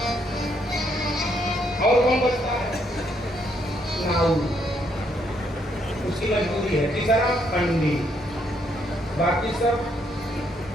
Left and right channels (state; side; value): normal; both; correlation 0.73